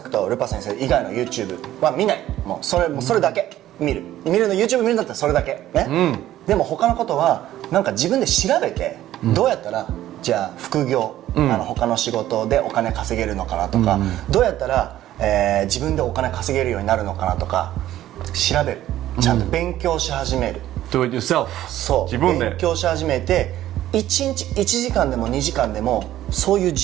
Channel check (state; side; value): quieter; left; 13.4 dB